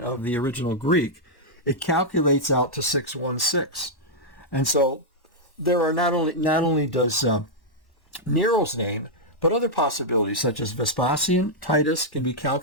the original Greek, it calculates out to 616. And so there are not only does Nero's name, but other possibilities such as Vespasian, Titus can be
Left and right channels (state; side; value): late; right; 1.1 ms